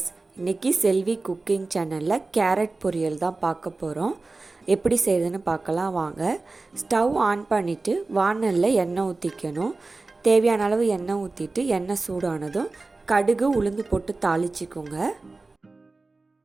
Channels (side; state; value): left; quieter; 3.5 dB